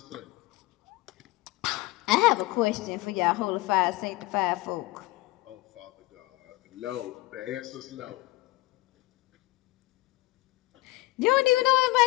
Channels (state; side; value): quieter; right; 19.8 dB